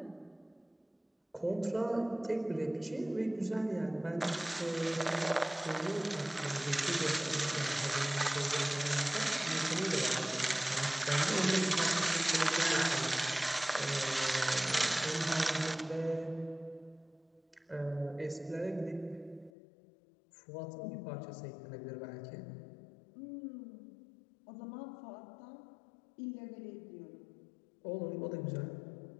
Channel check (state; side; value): drops out; right; at 19.5 s